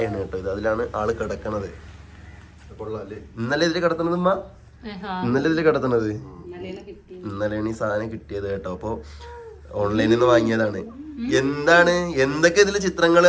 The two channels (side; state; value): both; identical; correlation 1.00